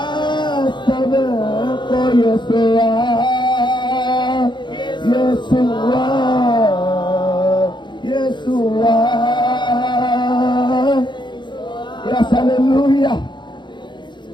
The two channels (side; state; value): right; late; 0.22 ms